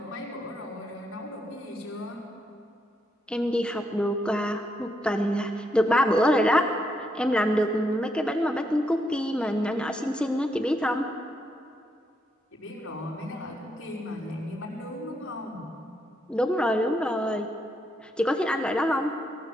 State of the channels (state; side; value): normal; both; correlation 0.79